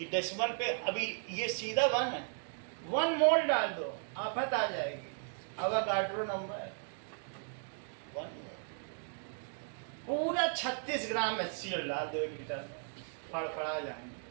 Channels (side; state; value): left; silent; digital silence